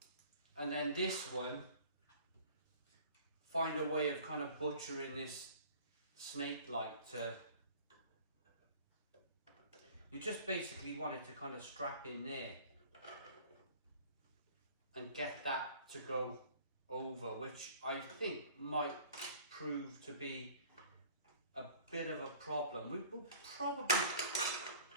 And then this one, find a way of kind of butchering this snake light to, you just basically want it to kind of strap in there and get that to go over, which I think might prove to be a bit of a problem. We will probably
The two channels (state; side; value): inverted; both; correlation -0.48